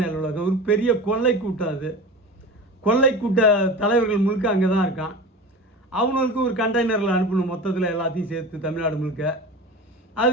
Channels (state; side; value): normal; both; correlation 0.32